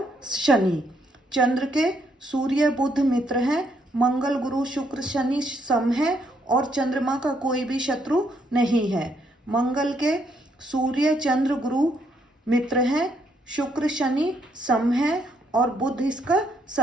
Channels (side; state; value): both; normal; correlation 0.73